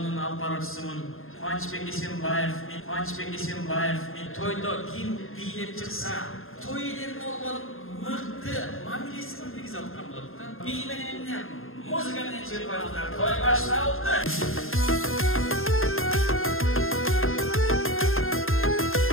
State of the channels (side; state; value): right; late; 0.60 ms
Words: алып баруучусумун. Кубанычбек Эсенбаев, мен тойдо ким бийлеп чыкса, той элерин болгон мыкты мамилесин киргизе аткан болот да. Би менен эмне музыка менен чыгып коюңуздар. Той башталды.